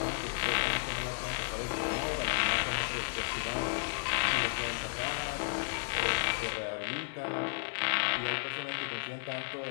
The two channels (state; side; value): quieter; right; 35.9 dB